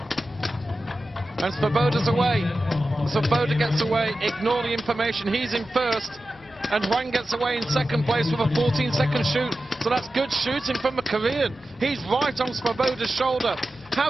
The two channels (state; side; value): noise; left; hum, 26 dB below the sound